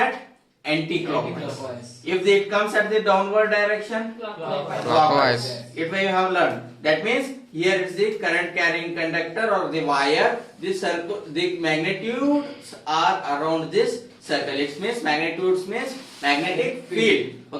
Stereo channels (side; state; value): both; identical; correlation 1.00